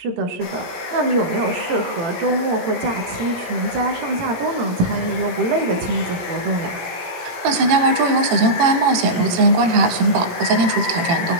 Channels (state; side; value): late; left; 18 ms